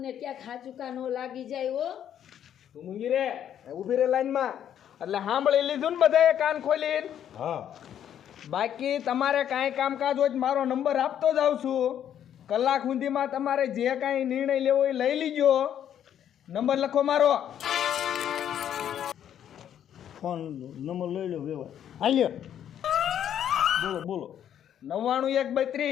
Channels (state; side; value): quieter; right; 9.9 dB